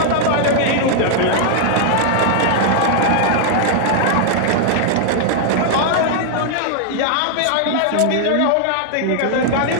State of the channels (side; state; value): both; different; correlation 0.00